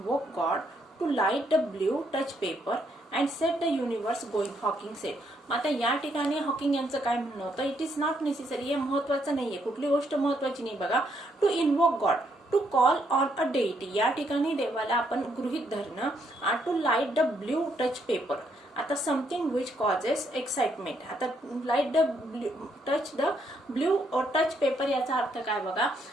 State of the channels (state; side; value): normal; both; correlation 0.73